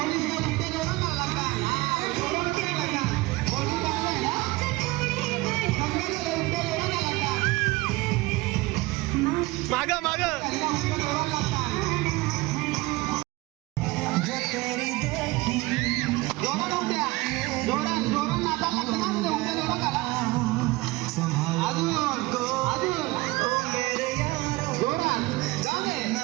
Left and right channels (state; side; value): quieter; left; 21.2 dB